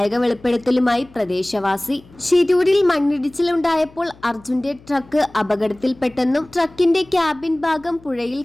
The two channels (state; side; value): noise; left; hum, 25 dB below the sound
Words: വെളിപ്പെടുത്തലുമായി പ്രദേശവാസി. ഷിരൂരിൽ മണ്ണിടിച്ചിലുണ്ടായപ്പോൾ അർജുന്റെ ട്രക്ക് അപകടത്തിൽപ്പെട്ടെന്നും ട്രക്കിന്റെ ക്യാബിൻ ഭാഗം പുഴയിൽ